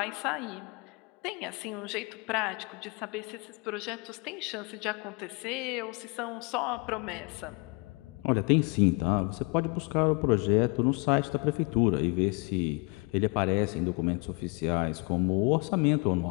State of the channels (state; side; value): quieter; right; 29.9 dB